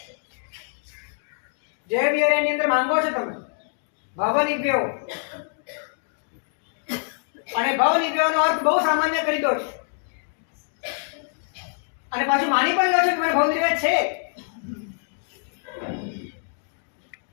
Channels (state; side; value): silent; right; digital silence